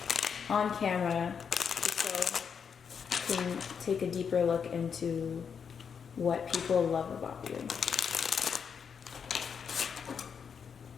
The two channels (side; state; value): right; quieter; 6.8 dB